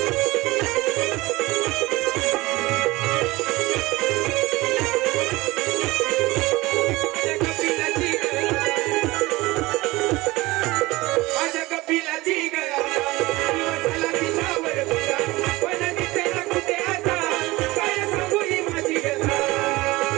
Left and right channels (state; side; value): quieter; left; 20.6 dB